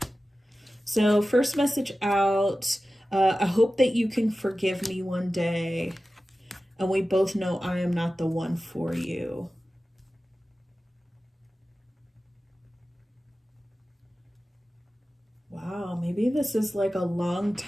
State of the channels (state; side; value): normal; both; correlation 0.95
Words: So first message out, I hope that you can forgive me one day. And we both know I am not the one for you. Wow, maybe this is like a long